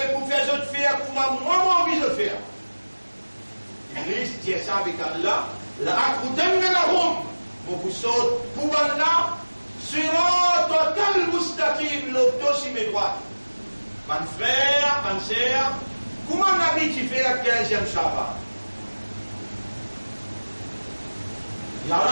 pour faire autre faire pour moi envie de faire. Iblis dit ça avec Allah, la akudannahum, mon vous saute pour ban-là, sur total mustaqim, l'auto sur mes droites. Mon frère, mon sœur, comment on a dit tu fais la 15e Shabbat?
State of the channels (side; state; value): both; inverted; correlation -1.00